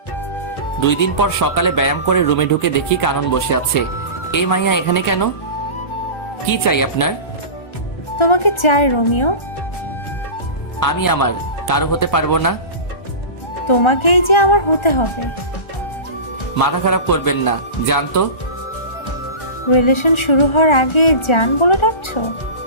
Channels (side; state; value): right; late; 1.4 ms